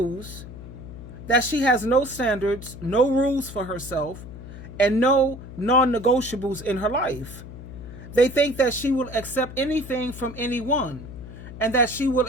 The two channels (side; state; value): left; noise; hum, 13 dB below the sound